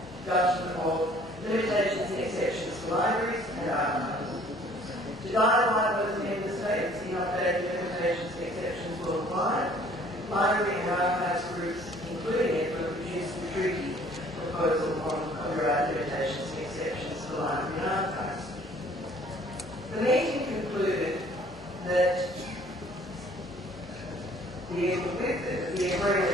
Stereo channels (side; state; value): both; normal; correlation 0.56